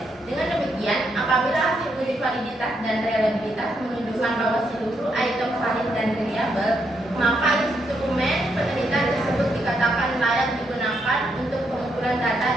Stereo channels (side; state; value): both; normal; correlation 0.78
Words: Dengan demikian, apabila hasil uji validitas dan reliabilitas menunjukkan bahwa seluruh item valid dan reliable, maka instrumen penelitian tersebut dikatakan layak digunakan untuk pengumpulan data